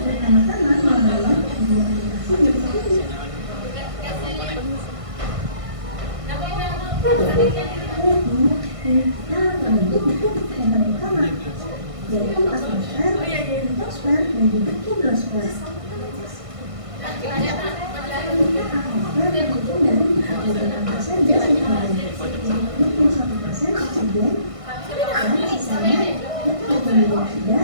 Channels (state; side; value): late; left; 1.5 ms